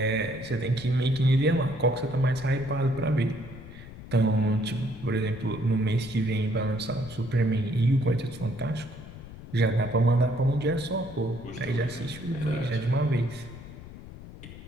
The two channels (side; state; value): left; noise; rumble, 15 dB below the sound